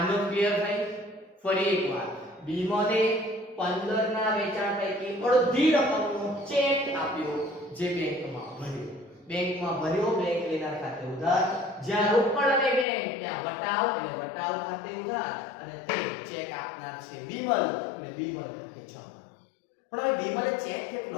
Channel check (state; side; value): drops out; right; at 12.9 s